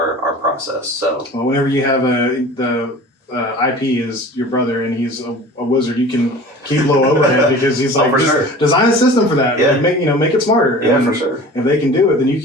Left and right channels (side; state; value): both; normal; correlation 0.40